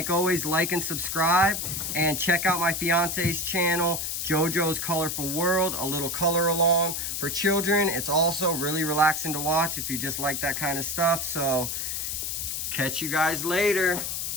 always, like and subscribe, and check out my fiance's channel, JoJo's Colorful World, a little color along for children. It's also really relaxing to watch if you just like that kind of stuff. So catch you guys later.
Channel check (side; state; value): left; noise; hiss, 2 dB below the sound